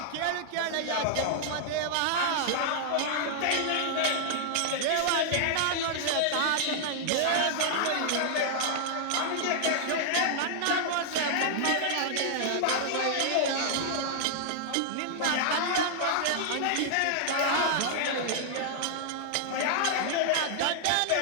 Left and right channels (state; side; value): different; both; correlation -0.01